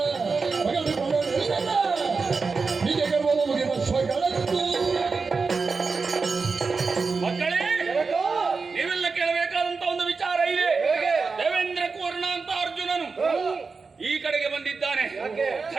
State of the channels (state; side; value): quieter; left; 4.6 dB